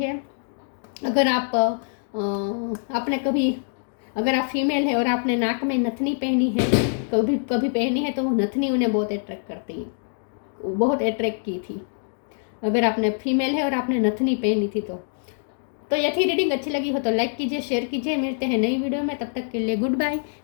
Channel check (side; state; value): right; silent; 62 dB below the other